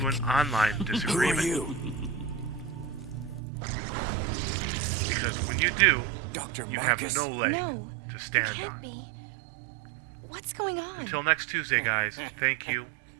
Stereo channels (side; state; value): left; drops out; at 3.4 s